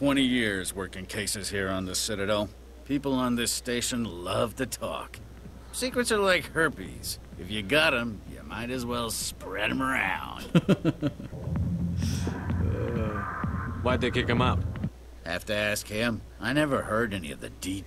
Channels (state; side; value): identical; both; correlation 1.00